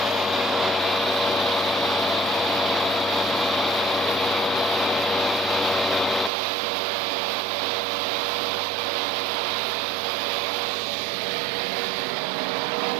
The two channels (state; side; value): drops out; left; at 6.3 s